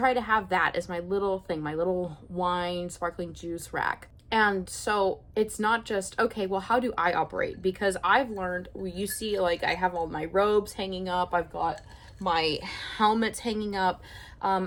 to have that as my little thing, my little wine, sparkling juice rack. And so it's not just, okay, well, how do I operate? Because I've learned, you see, like, I have all my robes hanging up, I've got my helmets hanging up,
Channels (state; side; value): identical; both; correlation 1.00